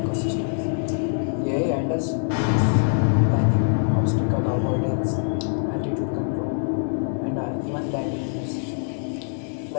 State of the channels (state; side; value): silent; right; digital silence